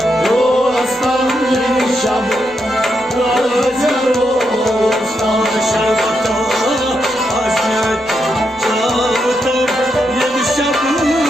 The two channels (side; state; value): left; noise; rumble, 28 dB below the sound